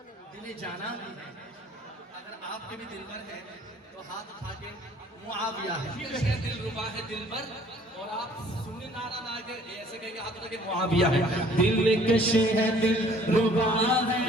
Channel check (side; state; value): both; normal; correlation 0.56